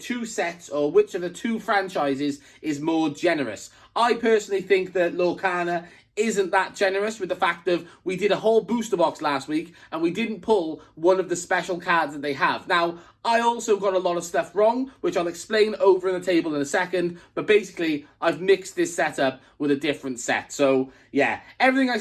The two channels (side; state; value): both; identical; correlation 1.00